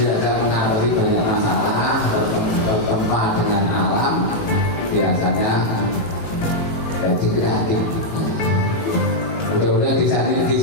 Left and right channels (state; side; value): late; right; 19 ms